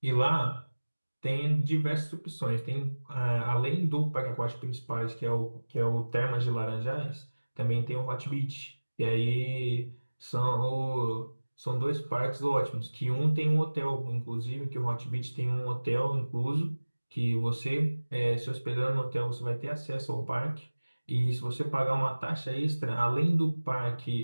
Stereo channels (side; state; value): both; inverted; correlation -1.00